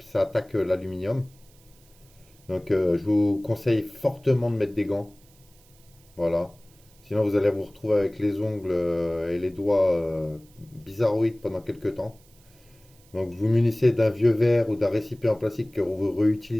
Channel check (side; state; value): right; noise; hiss, 29 dB below the sound